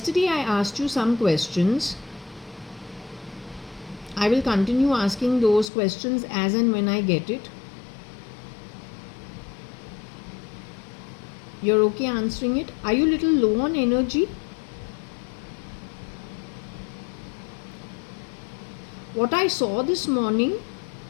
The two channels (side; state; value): right; drops out; at 5.7 s